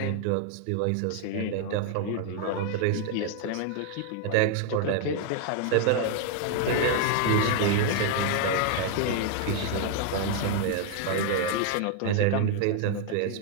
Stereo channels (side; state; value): both; different; correlation 0.00